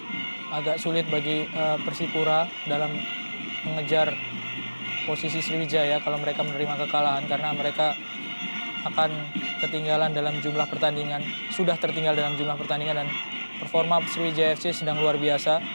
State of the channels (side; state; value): both; inverted; correlation -1.00